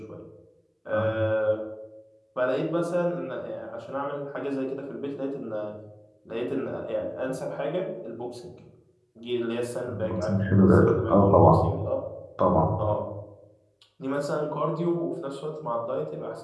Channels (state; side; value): identical; both; correlation 1.00